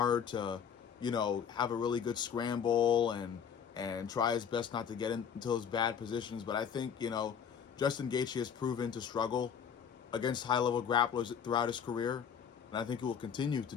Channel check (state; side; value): quieter; right; 7.6 dB